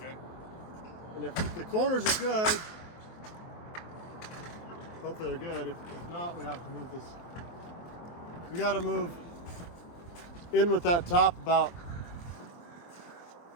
And if the corners are good, hopefully they're good. If not, we have to move this. We got to move in with that top about.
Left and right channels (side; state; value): right; late; 23 ms